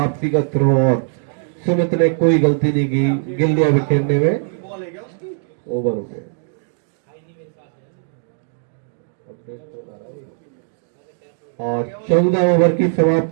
का थ्रो और सुमित ने कोई गलती नहीं की गिल्लियां बिखेरने में। ओवर हो गए। और 14 ओवर की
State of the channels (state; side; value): silent; left; digital silence